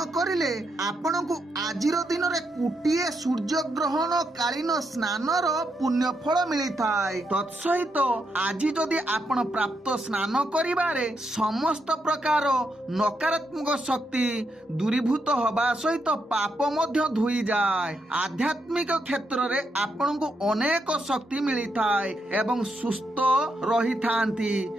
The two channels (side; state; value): both; normal; correlation 0.81